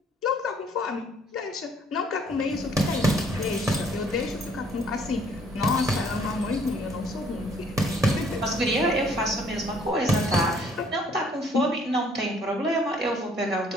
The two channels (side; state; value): both; normal; correlation 0.61